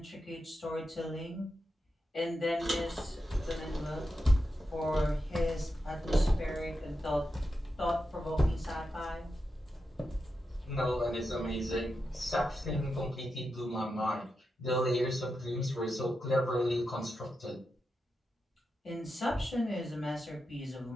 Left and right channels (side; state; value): both; normal; correlation 0.88